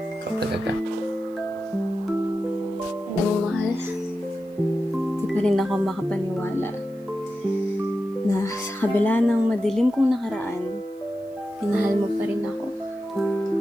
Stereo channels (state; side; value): noise; right; hiss, 30 dB below the sound